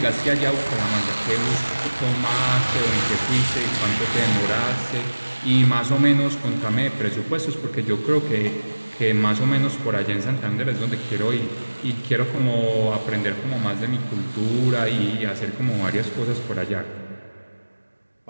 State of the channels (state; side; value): inverted; both; correlation -1.00